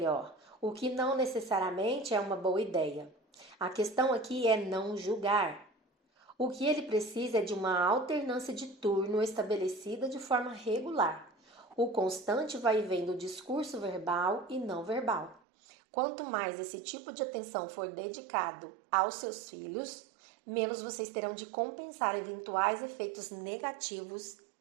o que não necessariamente é uma boa ideia. A questão aqui é não julgar. O que ele precisa é de uma alternância de turno estabelecida de forma regular. O constante vai e vem do discurso verbal e não verbal. Quanto mais esse tipo de atenção for dedicado aos seus filhos, menos vocês terão de compensar eventuais efeitos negativos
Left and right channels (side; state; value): left; drops out; at 15.4 s